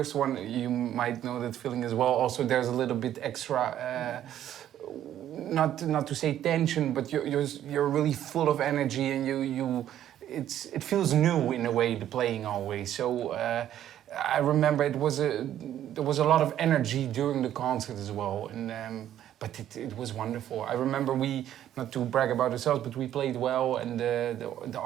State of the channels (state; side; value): quieter; left; 11.4 dB